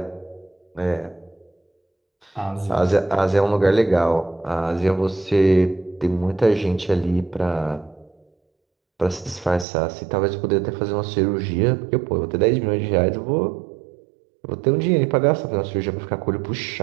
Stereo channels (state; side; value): drops out; left; at 9.7 s